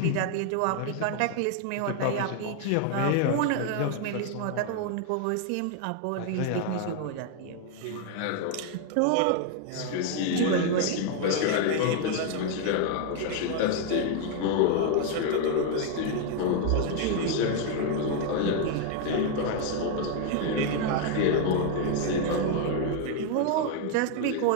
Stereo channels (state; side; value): different; both; correlation 0.00